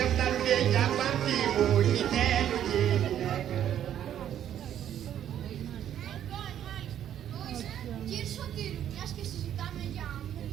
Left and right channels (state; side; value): quieter; left; 10.5 dB